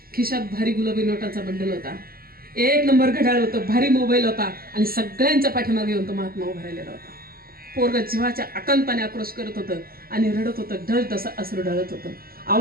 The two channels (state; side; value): late; left; 0.43 ms